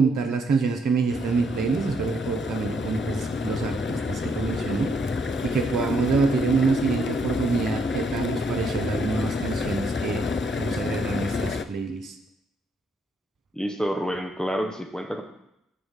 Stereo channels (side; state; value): both; normal; correlation 0.73